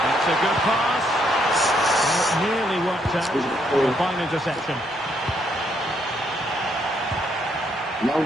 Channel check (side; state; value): both; normal; correlation 0.73